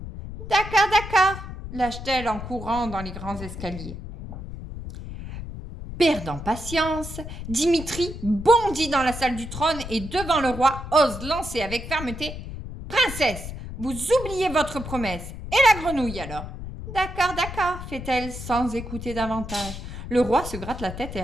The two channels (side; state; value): left; noise; rumble, 9 dB below the sound